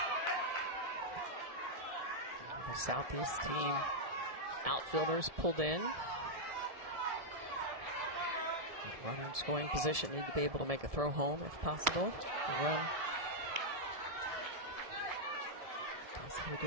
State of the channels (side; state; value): left; late; 1.7 ms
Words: The Southeast team outfielders pulled in. Runner in scoring position, need to be able to make a throw home if possible. The run possibly